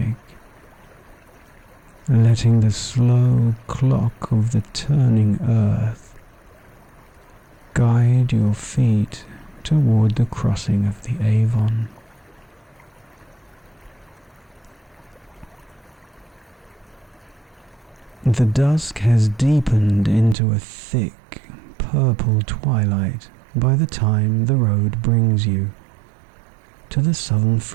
letting the slow clock of the turning earth guide your feet toward the crossing of the Avon. The dusk has deepened into a thick, purple twilight by the time the road brings you to the southern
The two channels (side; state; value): left; drops out; at 20.4 s